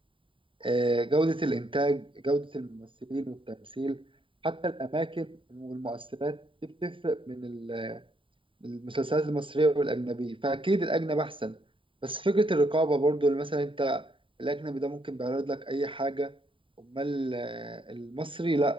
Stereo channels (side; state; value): left; late; 0.25 ms